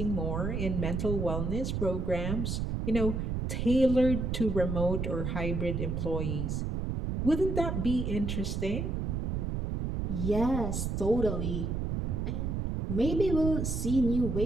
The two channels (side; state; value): right; noise; rumble, 1 dB below the sound